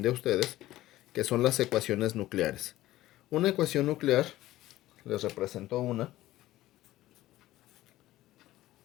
a ustedes, que son las ecuaciones nucleares. Una ecuación nuclear, les represento una.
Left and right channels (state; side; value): quieter; right; 15.7 dB